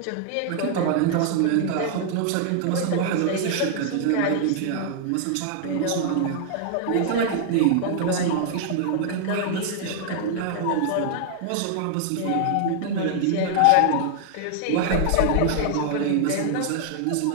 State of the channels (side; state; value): both; different; correlation 0.00